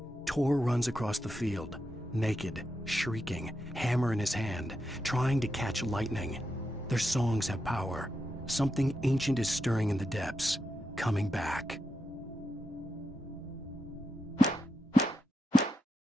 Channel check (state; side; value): normal; both; correlation 0.86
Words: Tor runs across the field, naked, shrieking, hammer in his hand, trying to catch lightning. Their songs have power. Something ancient is stirring in the depths, coming back.